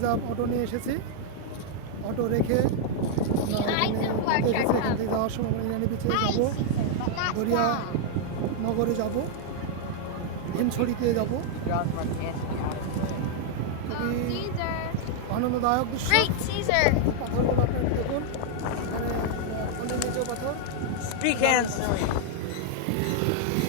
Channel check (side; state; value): both; different; correlation 0.00